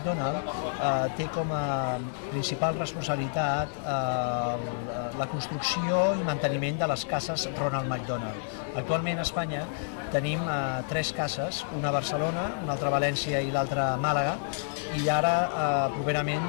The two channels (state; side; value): silent; right; 59 dB below the other